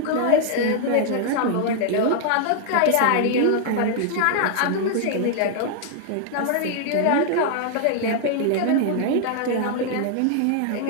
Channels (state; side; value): different; both; correlation 0.00